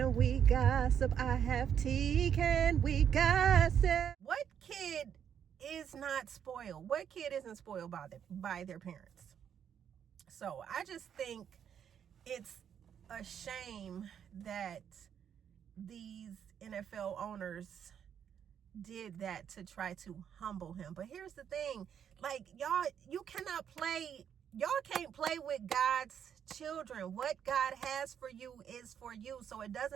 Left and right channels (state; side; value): quieter; left; 8.5 dB